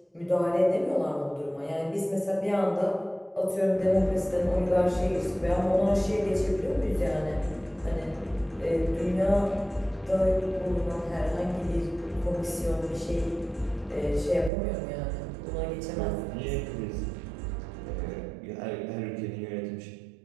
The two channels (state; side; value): drops out; left; at 14.5 s